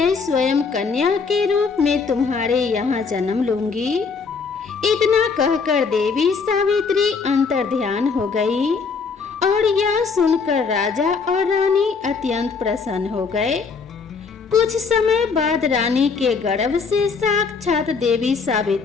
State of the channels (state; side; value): quieter; right; 5.1 dB